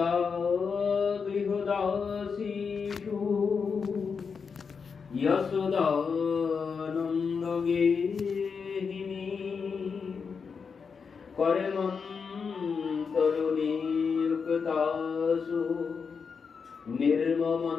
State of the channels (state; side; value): quieter; right; 5.7 dB